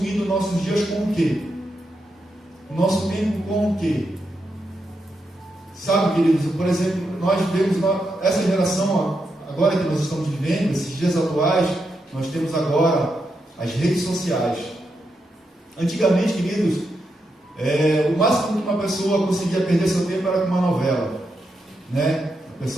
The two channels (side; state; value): both; normal; correlation 0.84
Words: nossos dias com o quê? Nosso tempo com o quê? Sabe, queridos, por exemplo, nós vemos essa geração agora que nós estamos vivendo, esses dias atuais, nós temos agora as redes sociais. Antigamente, queridos, o máximo que uma pessoa conseguia perder seu tempo era com uma novela, né? A